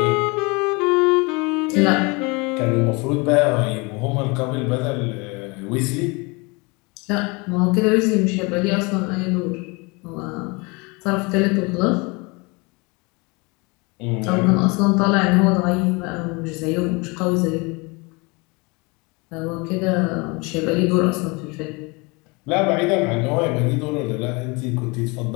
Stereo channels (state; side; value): quieter; right; 27.9 dB